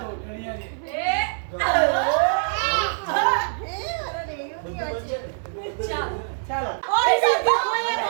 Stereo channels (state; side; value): silent; left; 62 dB below the other